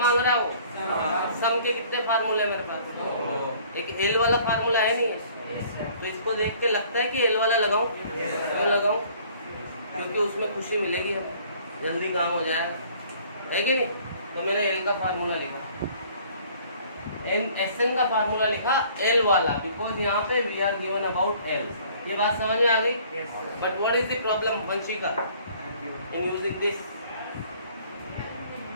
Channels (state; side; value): inverted; both; correlation -0.55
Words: रहा है वो? सम के कितने फार्मूले मेरे पास? एक एल वाला फार्मूला है नहीं है, तो इसको देख के लगता है कि एल वाला लगाऊं, क्यों लगाऊं? क्योंकि उसमें खुशी मिलेगी हमें, जल्दी काम हो जाए, है कि नहीं? तो मैंने एल का फार्मूला लिखा, एस एन का फार्मूला लिखा एल वाला, बिकॉज यहाँ पे we are given about L. ये बात समझ में आ गई? But what is the problem Vanshika in using this?